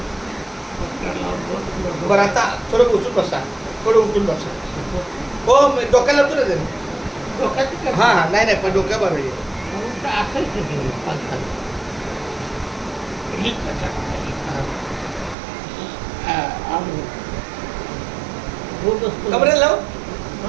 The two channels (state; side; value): drops out; left; at 15.4 s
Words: बरं आता थोडं उचलून बसा, थोडं उचलून बसा. हो डोक्याला होतो ना तरी. डोक्यात हां हां नाही पण डोक्या बरं आहे. कमरेला लाव,